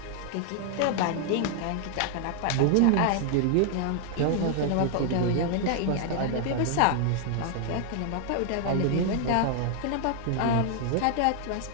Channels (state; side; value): different; both; correlation 0.00